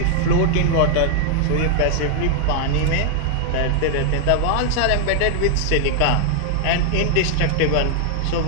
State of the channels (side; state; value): both; different; correlation 0.00